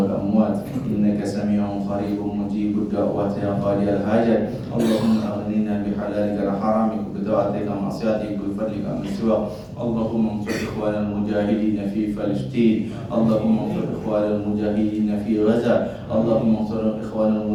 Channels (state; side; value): identical; both; correlation 1.00